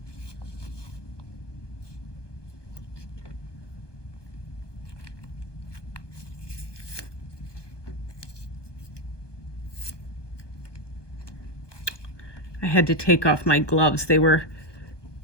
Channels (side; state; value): right; late; 1.2 ms